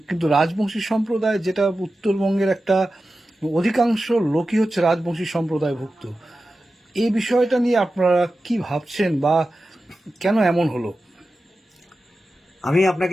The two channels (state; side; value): normal; both; correlation 0.93